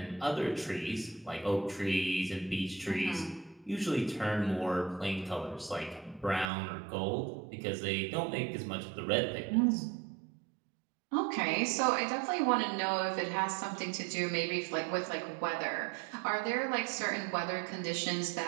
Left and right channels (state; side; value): drops out; left; at 6.5 s